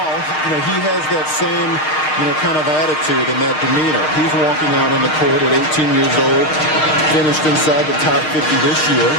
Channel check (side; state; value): right; late; 6.5 ms